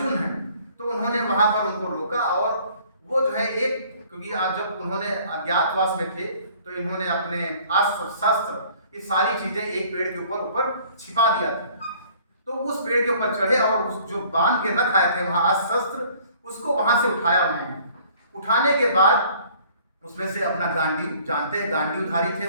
है। तो उन्होंने वहां पर उनको रोका और वो जो है एक, क्योंकि आज जब उन्होंने अज्ञातवास में थे तो इन्होंने अपने अस्त्र शस्त्र ये सारी चीजें एक पेड़ के ऊपर ऊपर छिपा दिया था। तो उस पेड़ के ऊपर चढ़े और उस जो बांध के रख आए थे वहां अस्त्र शस्त्र, उसको वहां से उठाया उन्होंने। उठाने के बाद उसमें से अपना गांडीव, जानते हैं गांडीवधारी थे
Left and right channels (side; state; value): both; inverted; correlation -0.55